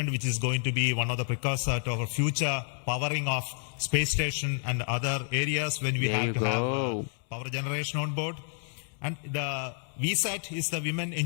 which is going to be one of the precursors to our future powering of space station and other areas when we have to have power generation on board. And the VSAT is the Women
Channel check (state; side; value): silent; right; digital silence